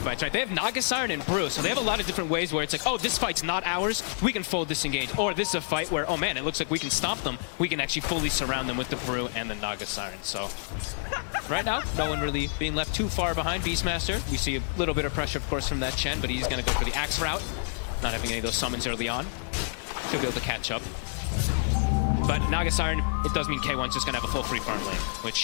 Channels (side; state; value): right; silent; digital silence